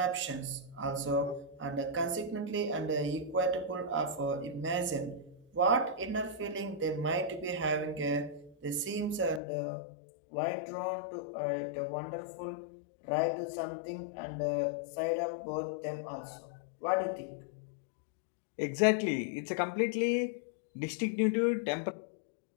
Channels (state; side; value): drops out; right; at 9.4 s